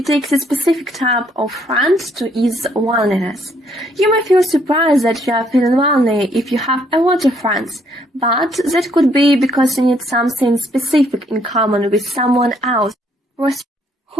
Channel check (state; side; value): normal; both; correlation 0.69